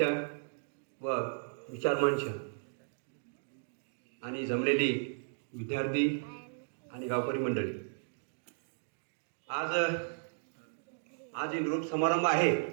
व विचारमंच आणि जमलेली विद्यार्थी आणि गावकरी मंडळी, आज निरोप समारंभ आहे.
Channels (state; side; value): silent; left; digital silence